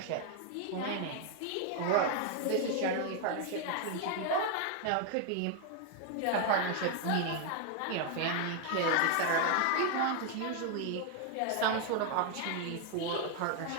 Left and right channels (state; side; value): different; both; correlation 0.00